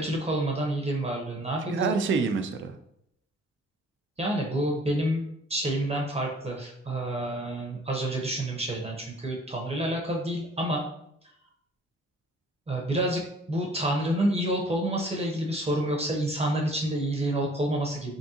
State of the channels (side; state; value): both; normal; correlation 0.54